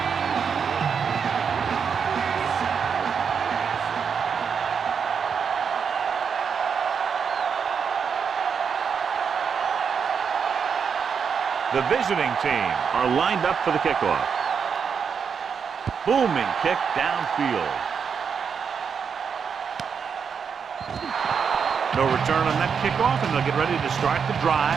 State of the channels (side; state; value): left; quieter; 6.5 dB